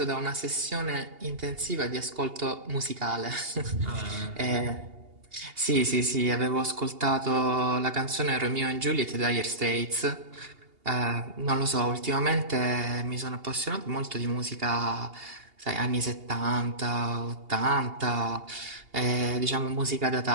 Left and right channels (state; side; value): late; left; 2.8 ms